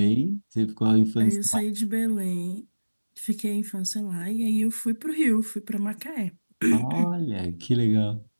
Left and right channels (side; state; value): both; inverted; correlation -1.00